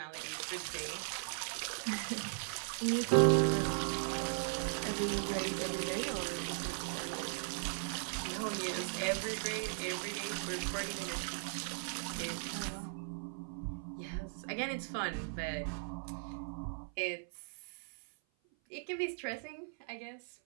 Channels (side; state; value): left; silent; 52 dB below the other